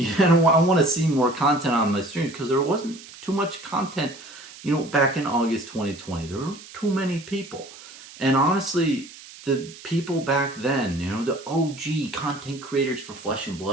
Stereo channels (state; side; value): noise; right; hiss, 18 dB below the sound